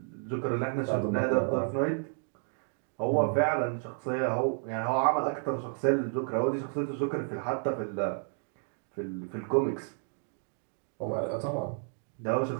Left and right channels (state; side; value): silent; left; 57 dB below the other